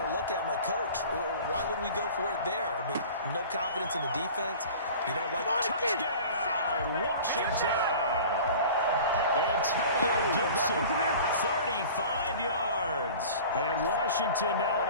to look at him like, Coach, why would we go for it there? I mean, no confidence in the defense. You don't like touchdown, Washington. Antonio Gibson, 35 yards. And Washington now an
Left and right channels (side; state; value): both; inverted; correlation -0.41